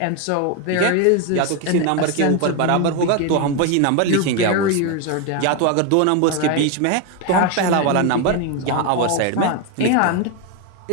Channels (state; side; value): different; both; correlation 0.02